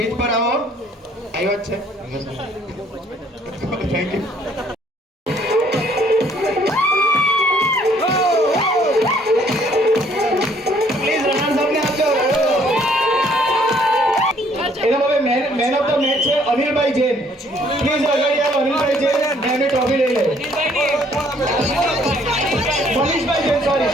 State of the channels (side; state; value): both; normal; correlation 0.63